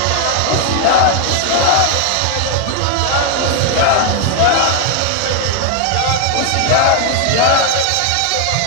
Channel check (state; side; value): different; both; correlation 0.00